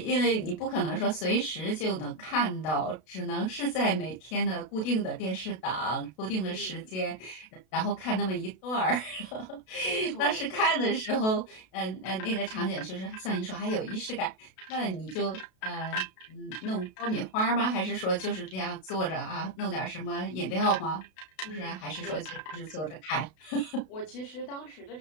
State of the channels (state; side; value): late; right; 32 ms